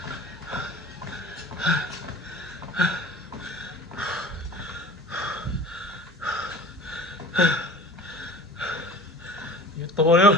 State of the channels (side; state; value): both; normal; correlation 0.41